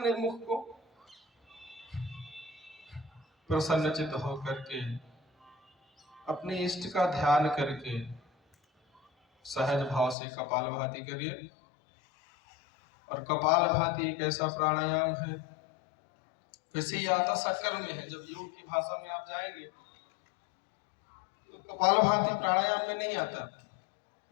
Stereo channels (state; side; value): drops out; right; at 10.2 s